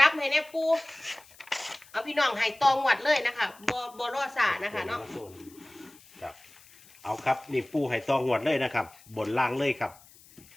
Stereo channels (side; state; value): left; noise; hiss, 25 dB below the sound